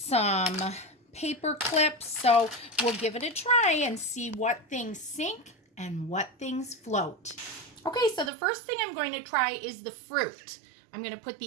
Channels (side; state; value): left; drops out; at 8.3 s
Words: paper clips. So we'll give it a try and see what things sink and what things float. Okay, so the first thing I'm going to try is the fruit. I'm going to put